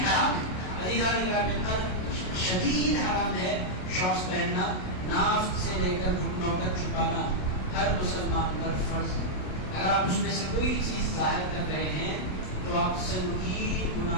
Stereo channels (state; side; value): late; right; 27 ms